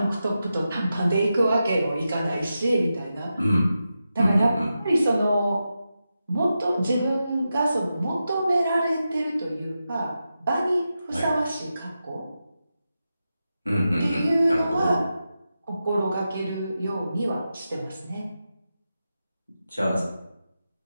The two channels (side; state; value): both; inverted; correlation -0.90